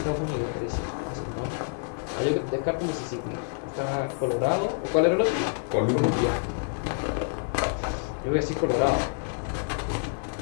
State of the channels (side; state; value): right; silent; 60 dB below the other